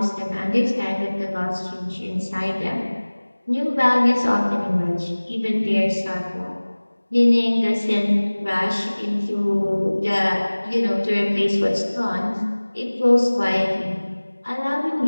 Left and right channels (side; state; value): both; inverted; correlation -1.00